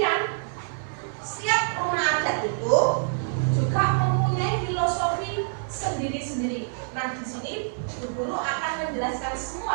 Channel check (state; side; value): silent; left; 56 dB below the other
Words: setiap rumah adat itu juga mempunyai filosofi sendiri-sendiri. Nah, di sini Bu Guru akan menjelaskan